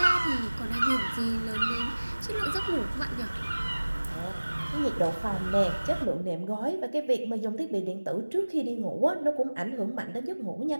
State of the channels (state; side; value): inverted; both; correlation -1.00